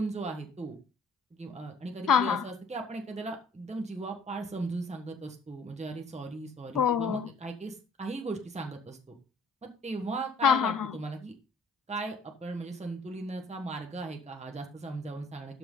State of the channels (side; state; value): right; quieter; 3.3 dB